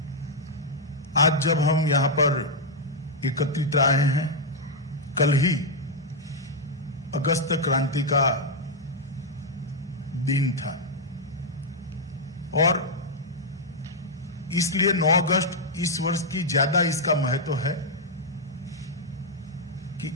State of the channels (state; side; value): normal; both; correlation -0.03